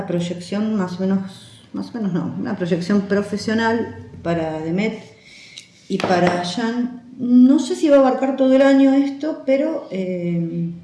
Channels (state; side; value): identical; both; correlation 1.00